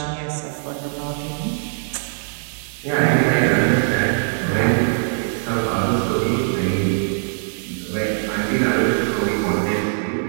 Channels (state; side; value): silent; left; 65 dB below the other